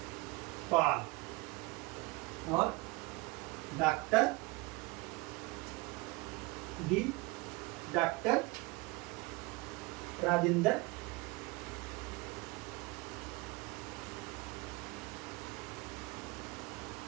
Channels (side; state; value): left; quieter; 23.1 dB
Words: Pal और डॉक्टर राजेंद्र